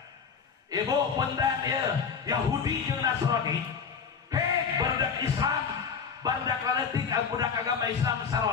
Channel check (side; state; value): right; quieter; 6.3 dB